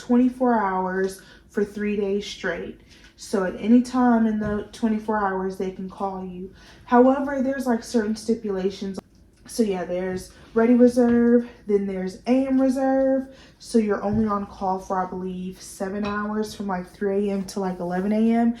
hours for 3 days straight. So at any time in the 24 hours they can call you. However, there's like certain stipulations. So yeah, there's ready reserve, then there's AM reserve. So you're only on call for, I believe, 7 hours from like 3 a.m. to like 11 a.m.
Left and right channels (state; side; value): identical; both; correlation 1.00